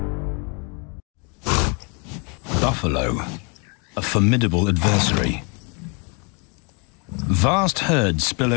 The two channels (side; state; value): right; quieter; 34.0 dB